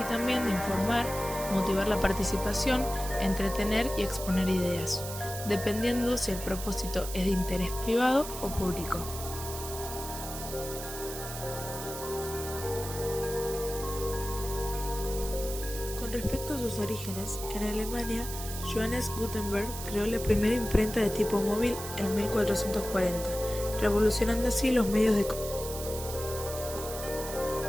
también de informar, motivar la participación, entretener y exponer ideas, dependiendo si el propósito es de interés privado o público. Con respecto a sus orígenes, en Alemania, Johannes Gutenberg creó la primera imprenta de tipo móvil en 1440, revolucionando así los medios de comunicación.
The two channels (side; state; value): right; noise; hiss, 9 dB below the sound